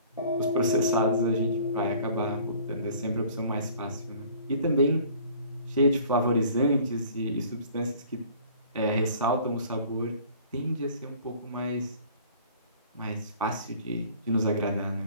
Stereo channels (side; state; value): both; inverted; correlation -0.51